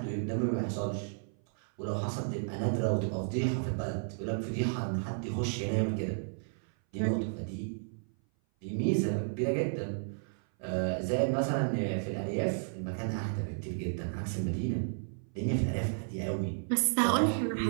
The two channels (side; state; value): left; silent; 56 dB below the other